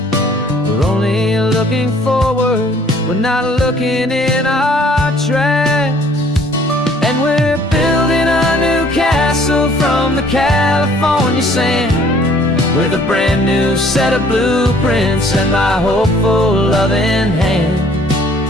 We're only looking forward, we're not looking in our tracks. And we're building a new castle from the California sand, with a brand new set of blueprints and my hopeful loving hand.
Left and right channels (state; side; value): normal; both; correlation 0.58